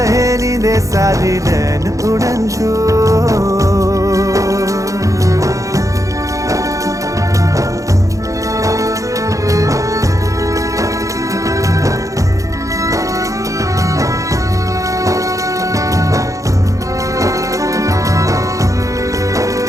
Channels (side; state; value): left; late; 0.16 ms